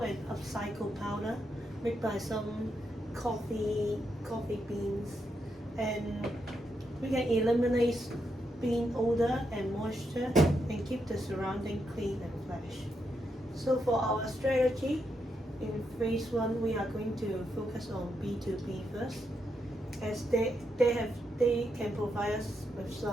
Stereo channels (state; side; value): normal; both; correlation 0.82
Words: upcycled powder made by some coffee beans, and we can eliminate bean odor and moisture and keep the surrounding clean and fresh. So for our strategy, in phase 1 we are going to focus on B2B first, as they can provide us with